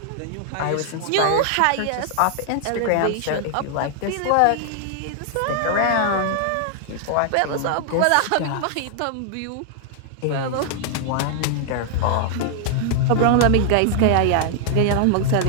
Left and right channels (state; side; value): different; both; correlation -0.01